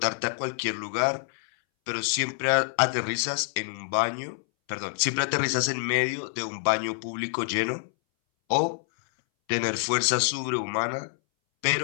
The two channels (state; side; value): silent; right; 60 dB below the other